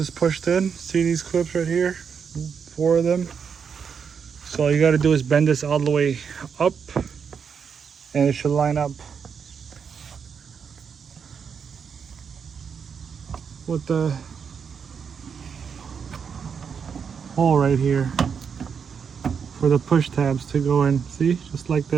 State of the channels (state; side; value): quieter; left; 6.6 dB